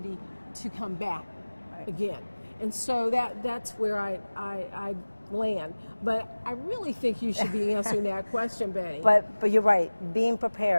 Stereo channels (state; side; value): inverted; both; correlation -1.00